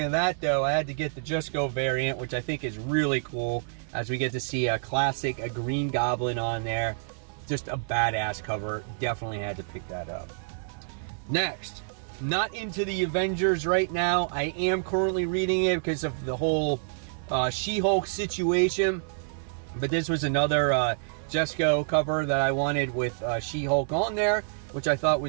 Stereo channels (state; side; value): silent; left; 59 dB below the other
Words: of that, though, I had to get the Just Go variant, which I think is really cool, as we get to see a Green Goblin on there. Just a badass cover. Definitely had to pick that up. Next, not into the Avengers right now. I am currently reading it because of the whole She-Hulk situation. But this was another Just Go cover that I wanted with She-Hulk on there, which I thought